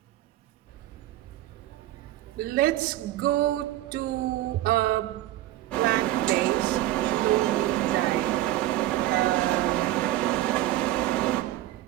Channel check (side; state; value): left; quieter; 15.0 dB